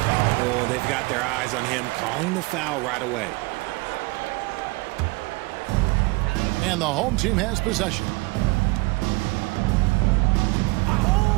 they've got their eyes on him, calling the foul right away. And the home team has possession.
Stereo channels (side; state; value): left; quieter; 24.5 dB